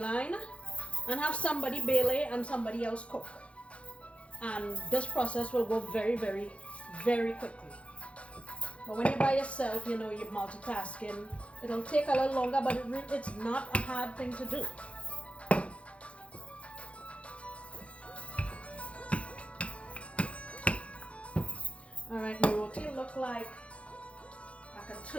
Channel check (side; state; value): right; late; 0.061 ms